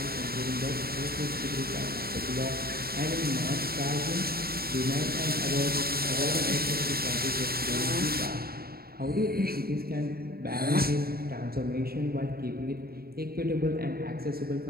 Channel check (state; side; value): late; left; 0.45 ms